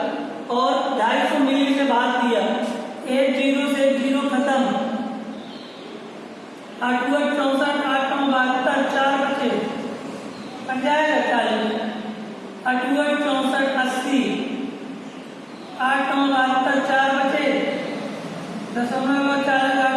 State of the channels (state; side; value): identical; both; correlation 1.00